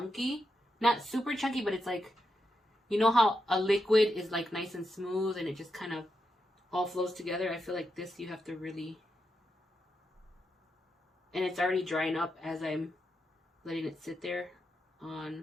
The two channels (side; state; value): both; normal; correlation 0.86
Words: Not super chunky, but it's like, you know how a liquid is like nice and smooth and it just kind of all flows together? I feel like this you have to really, and it's already drying up as I'm letting it sit there